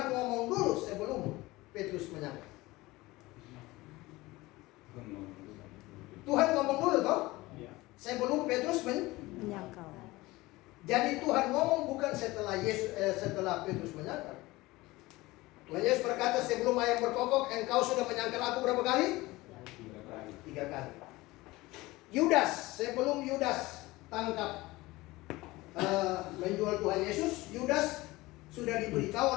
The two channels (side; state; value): right; quieter; 20.1 dB